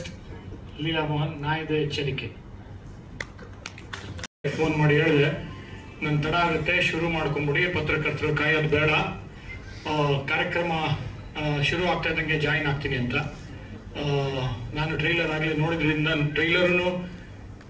Leela Mohan. ನಾ ಇದೆ ಎಚ್ಚರಿಕೆ. ಫೋನ್ ಮಾಡಿ ಹೇಳಿದೆ ನನ್ ತಡ ಆಗುತ್ತೆ, ಶುರು ಮಾಡ್ಕೊಂಡ್ಬಿಡಿ, ಪತ್ರಕರ್ತರು ಕಾಯೋದು ಬೇಡ, ಕಾರ್ಯಕ್ರಮ ಶುರು ಆಗ್ತಾ ಇದ್ದಂಗೆ ಜಾಯಿನ್ ಆಗ್ತೀನಿ ಅಂತ. ನಾನು ಟ್ರೈಲರ್ ಆಗಲಿ ನೋಡಿದ್ರಿಂದ ಟ್ರೈಲರ್ನು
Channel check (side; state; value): both; identical; correlation 1.00